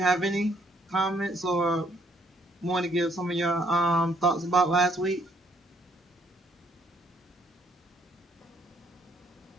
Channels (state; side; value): normal; both; correlation 0.68